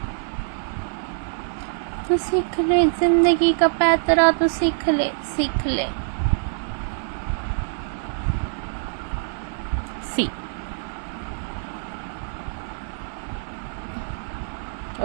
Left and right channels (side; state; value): left; silent; 62 dB below the other